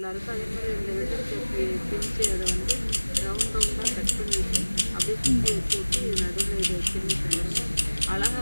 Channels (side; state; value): both; inverted; correlation -1.00